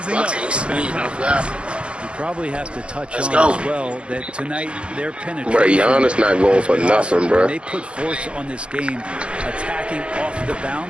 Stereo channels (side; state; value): left; late; 0.053 ms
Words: up. You probably have to touch Let's on go. as well that tonight their penetration. Bro, Giannis not going for nothing, bro. They put force on this game, attacking off the